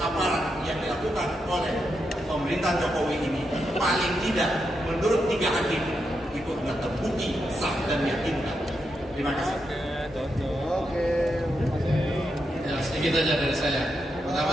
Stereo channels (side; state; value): both; normal; correlation 0.84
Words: yang dilakukan oleh pemerintah Jokowi ini paling tidak menurut 3 hakim itu sudah terbukti sah dan meyakinkan. Terima kasih. Oke. Ya, sedikit aja dari saya.